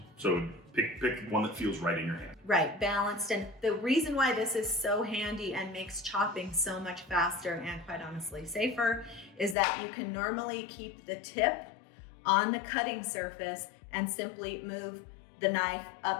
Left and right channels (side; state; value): right; drops out; at 9.6 s